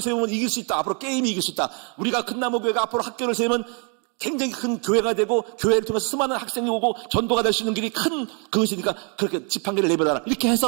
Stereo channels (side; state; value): left; quieter; 37.9 dB